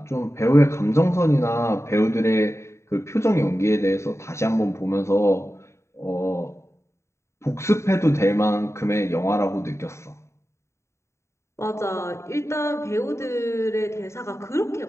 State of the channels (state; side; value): late; right; 0.14 ms